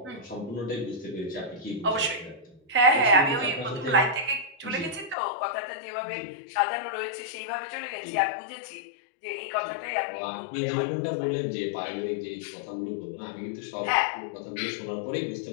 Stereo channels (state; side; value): drops out; right; at 5.2 s